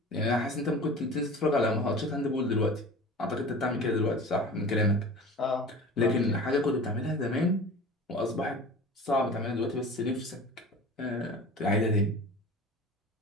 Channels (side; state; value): both; normal; correlation 0.37